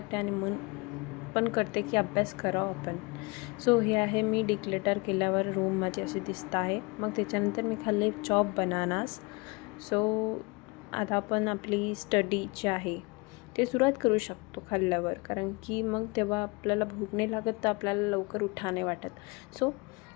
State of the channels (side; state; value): right; quieter; 27.3 dB